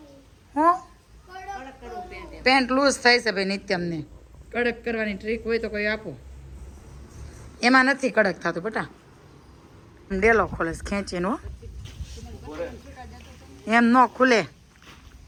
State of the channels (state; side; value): identical; both; correlation 1.00